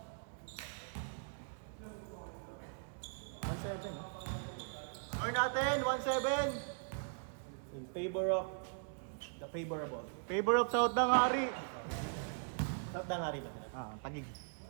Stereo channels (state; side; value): silent; left; digital silence